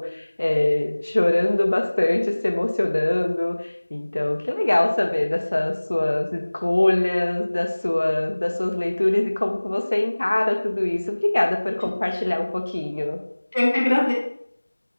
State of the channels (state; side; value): inverted; both; correlation -1.00